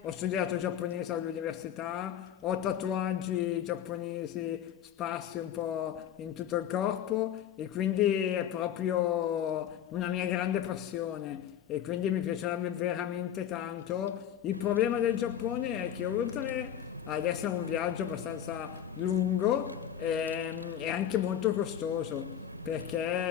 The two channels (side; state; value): right; quieter; 10.1 dB